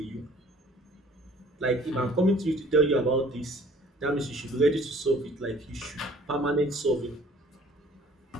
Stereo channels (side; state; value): both; normal; correlation 0.54